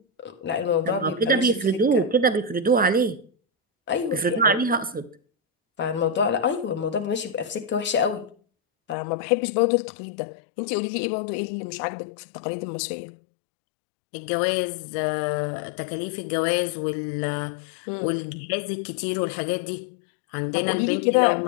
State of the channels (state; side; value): drops out; right; at 9.0 s